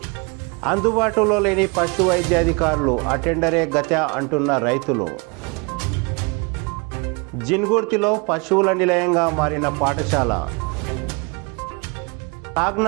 అందుబాటులో లేని పశు వైద్యాధికారులు అటెండరే గత అంటున్న రైతులు. జిన్గుర్తిలో పశువుల నిలయంగా మారిన పాఠశాల.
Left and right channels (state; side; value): quieter; left; 30.9 dB